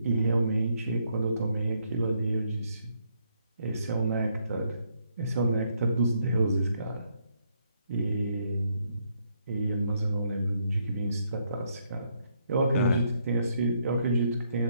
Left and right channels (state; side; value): inverted; both; correlation -0.74